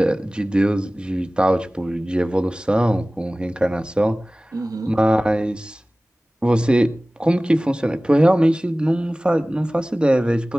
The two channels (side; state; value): both; normal; correlation 0.98